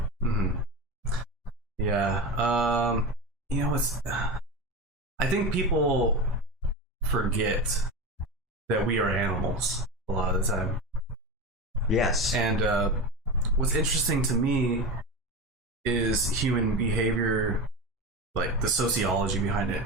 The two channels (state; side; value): normal; both; correlation 0.24